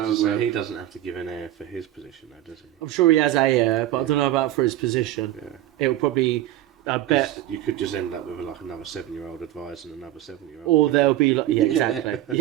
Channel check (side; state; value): left; quieter; 13.5 dB